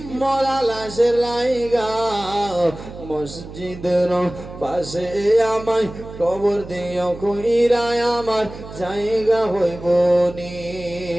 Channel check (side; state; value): right; noise; hum, 14 dB below the sound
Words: মরা লাশের লাইগা, মসজিদের পাশে আমায় কবর দিও কইরায় আমার জায়গা হইব নি।